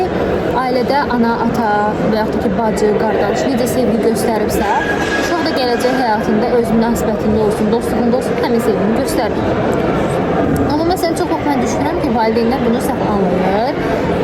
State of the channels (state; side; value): identical; both; correlation 1.00